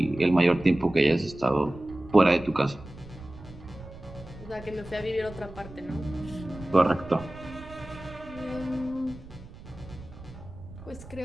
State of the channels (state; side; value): noise; right; rumble, 17 dB below the sound